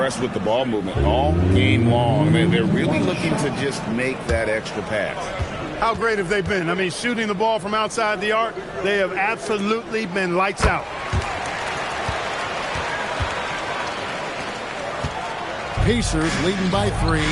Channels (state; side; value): identical; both; correlation 1.00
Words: with the ball movement all game long. They're really looking to just make that extra pass. How great have they been? I mean, shooting the ball from outside the arc, they have absolutely been lights out. Pacers leading by 3.